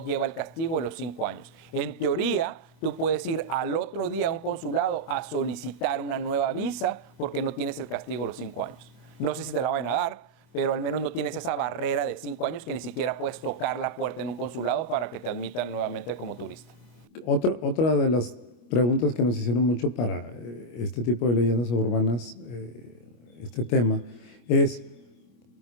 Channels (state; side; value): late; right; 25 ms